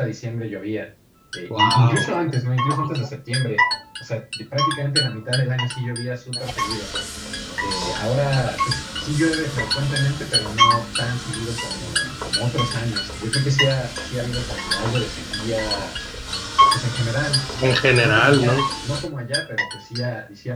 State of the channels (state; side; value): identical; both; correlation 1.00